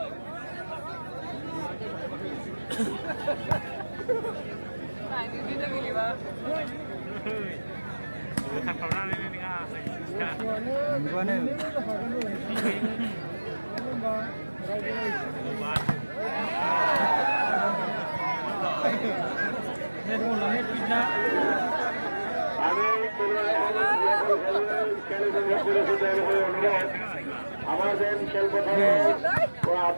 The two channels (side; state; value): both; inverted; correlation -1.00